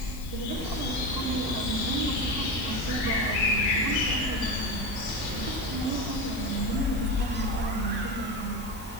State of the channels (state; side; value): noise; left; hiss, 17 dB below the sound